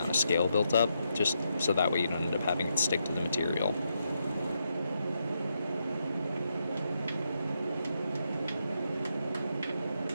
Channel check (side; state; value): both; inverted; correlation -0.81